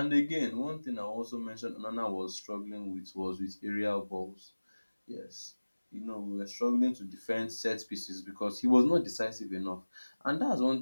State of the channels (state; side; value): inverted; both; correlation -1.00